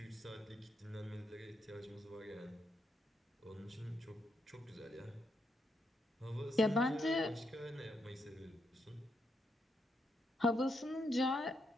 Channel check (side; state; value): both; normal; correlation 0.80